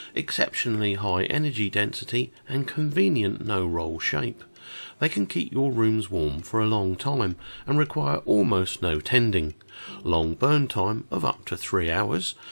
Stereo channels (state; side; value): inverted; both; correlation -1.00